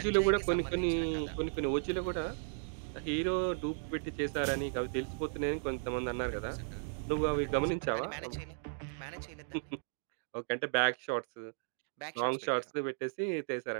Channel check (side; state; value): left; silent; digital silence